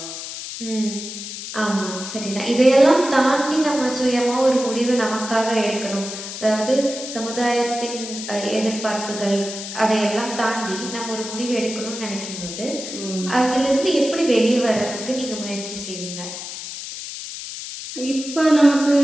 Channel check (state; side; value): noise; left; hiss, 9 dB below the sound